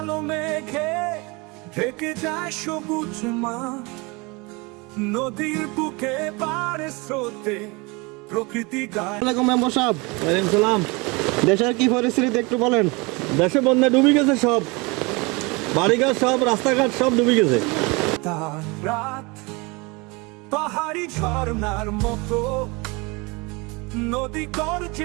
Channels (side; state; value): left; quieter; 26.8 dB